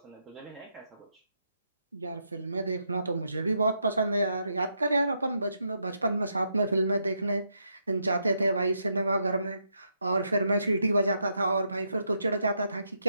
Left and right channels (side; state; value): both; inverted; correlation -0.80